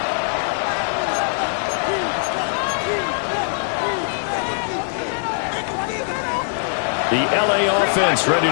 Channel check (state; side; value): silent; right; digital silence